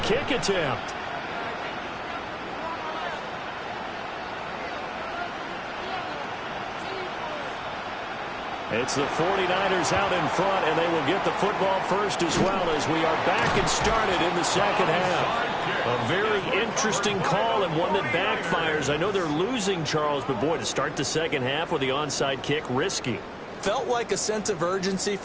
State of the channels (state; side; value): identical; both; correlation 1.00